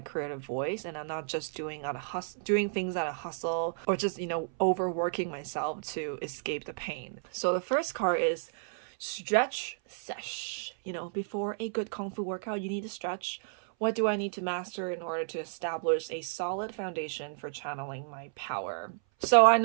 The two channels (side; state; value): left; silent; 56 dB below the other